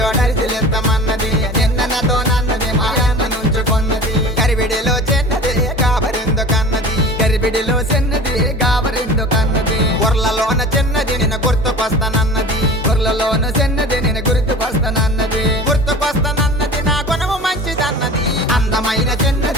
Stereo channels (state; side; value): normal; both; correlation 0.38